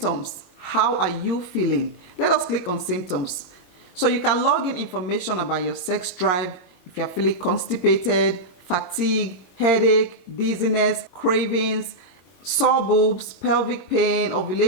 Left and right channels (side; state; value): right; late; 22 ms